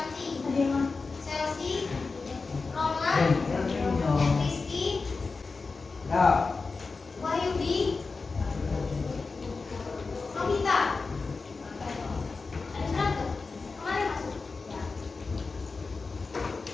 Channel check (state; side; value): quieter; right; 4.2 dB